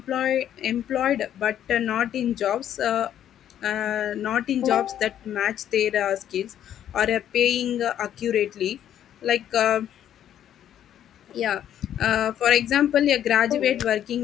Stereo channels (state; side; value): quieter; right; 10.5 dB